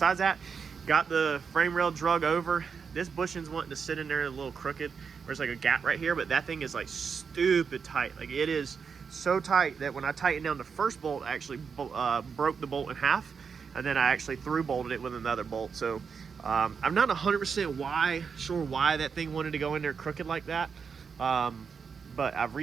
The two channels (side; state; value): left; quieter; 6.0 dB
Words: that, got the frame rail drug over. This bushing's wanting to sit in there a little crooked. There's like a gap right here, but that thing is like stupid tight. Like, it is so tight that when I tightened down the first bolt, I actually broke the bolt in half, and then I actually through bolted it with another bolt. So I'm not 100% sure why that thing wanted to go in there crooked like that, but I've